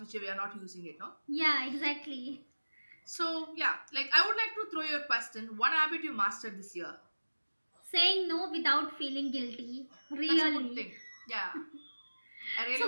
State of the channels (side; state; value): both; inverted; correlation -1.00